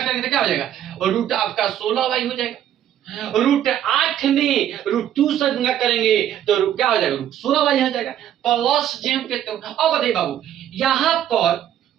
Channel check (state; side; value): quieter; left; 10.9 dB